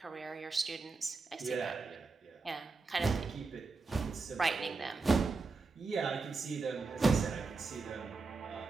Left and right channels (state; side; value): quieter; left; 4.0 dB